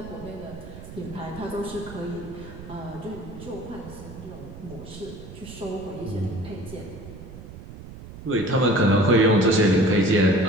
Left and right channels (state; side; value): noise; right; rumble, 14 dB below the sound